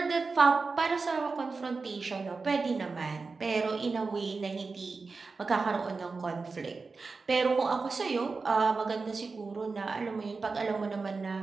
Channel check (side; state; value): left; quieter; 4.2 dB